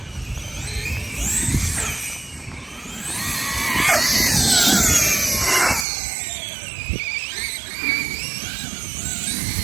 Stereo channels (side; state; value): left; drops out; at 5.9 s